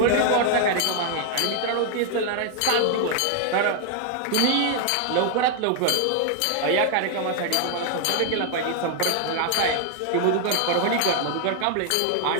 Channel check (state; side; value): different; both; correlation 0.00